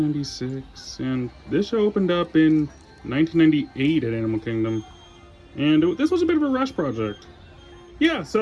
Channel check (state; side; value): identical; both; correlation 1.00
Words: and this show opened up in 1998 at Animal Kingdom. And this was a bit of a rush project. Yeah,